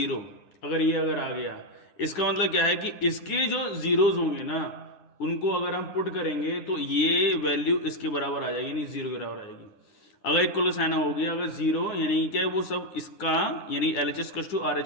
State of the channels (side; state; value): right; late; 9.7 ms